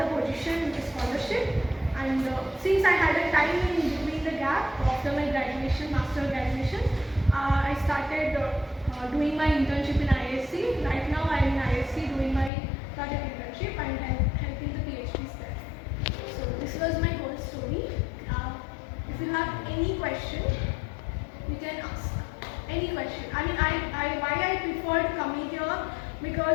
position with scholarship, and since I had a time in between the gap after my graduation, master graduation, I started doing my internship in ISC. Right now I am in ISC doing my project internship and helping the PhDs there. So this was my whole story. If you have any question, you can ask any question. I mean, why I preferred coming here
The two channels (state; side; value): drops out; right; at 12.5 s